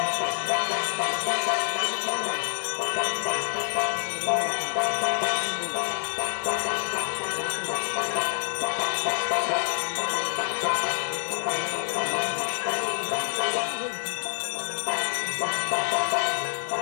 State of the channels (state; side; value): silent; right; 60 dB below the other